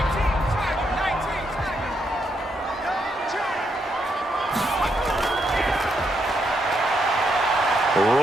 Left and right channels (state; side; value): normal; both; correlation 0.78